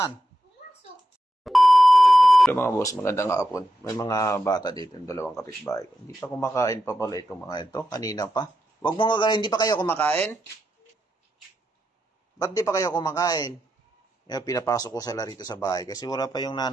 Pumasok. Hello mga boss, magandang hapon. May mga bata dito, yung dalawang kapitbahay ko. Hindi pa kumakain pa pala itong mga ito. Kanina pa. Huwag mo nga, hindi pa kayo kumakain? Ba't di pa kayo kumakain? Pinapasok ko sila rito sa bahay kasi wala pa yung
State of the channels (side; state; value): both; normal; correlation 0.87